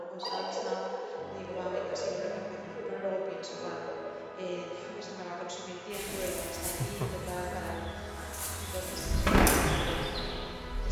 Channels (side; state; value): both; identical; correlation 1.00